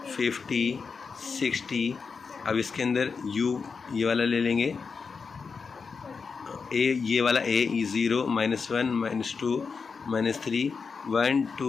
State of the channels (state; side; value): quieter; right; 5.2 dB